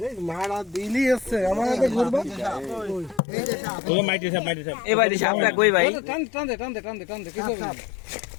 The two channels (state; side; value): drops out; right; at 3.2 s